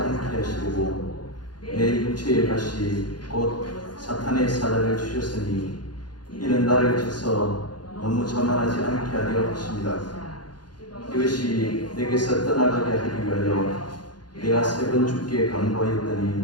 하시고 내 육체의 가시 곧 사탄의 사자를 주셨으니 이는 나를 쳐서 너무 자만하지 않게 하려 하십니다. 이것이 내게서 떠나가게 하기 위하여 내가 3번 주께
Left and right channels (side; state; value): right; late; 0.70 ms